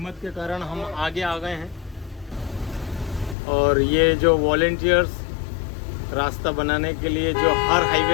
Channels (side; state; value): right; drops out; at 3.4 s